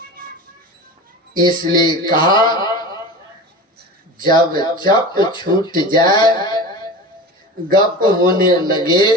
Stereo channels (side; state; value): both; normal; correlation 0.32